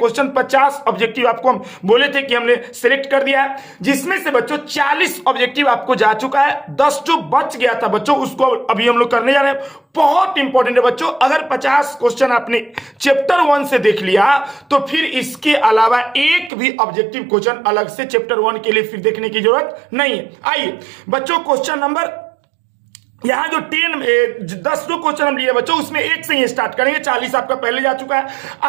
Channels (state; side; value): drops out; left; at 16.5 s